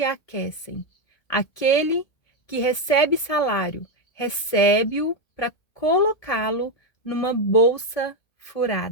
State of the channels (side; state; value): right; late; 1.8 ms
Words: aquecem. Aquele que recebe salário, recebe-o para colocá-lo numa bolsa